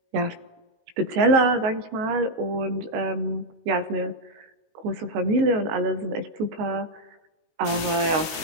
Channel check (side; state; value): left; late; 19 ms